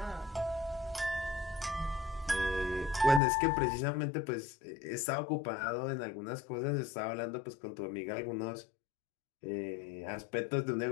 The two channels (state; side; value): drops out; right; at 3.2 s